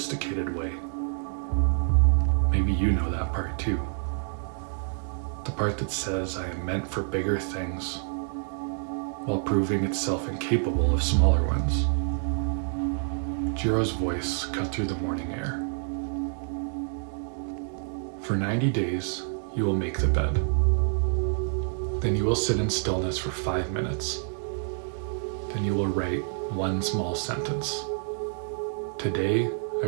way. Maybe you know that part too. The part that says I am meant for bigger things while proving itself incapable of smaller ones. Jiro's voice cut through the morning air. "For 90 days, you will make the bed. Then you will sit in stillness for 5 minutes. Then you will write one small sentence. Today, I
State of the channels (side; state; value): left; silent; 60 dB below the other